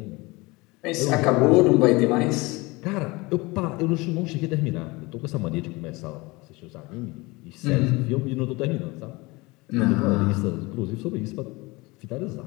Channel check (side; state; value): right; quieter; 23.8 dB